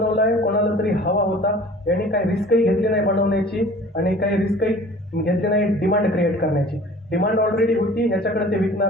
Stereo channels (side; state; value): both; normal; correlation 0.46